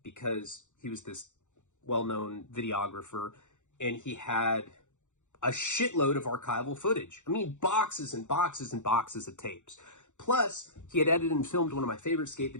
because he was this well-known videographer, and he had a shitload of archival footage. Boxes and boxes and boxes of tapes. Plus, he had edited and filmed one of my favorite skate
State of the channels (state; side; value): late; right; 0.85 ms